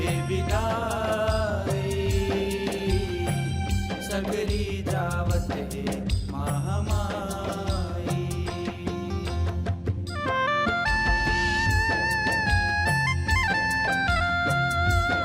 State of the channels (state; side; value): identical; both; correlation 1.00